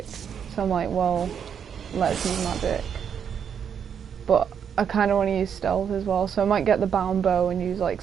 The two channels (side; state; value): left; quieter; 7.8 dB